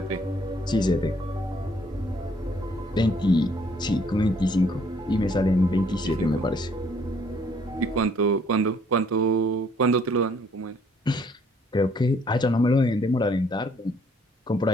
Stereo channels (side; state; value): both; normal; correlation 0.64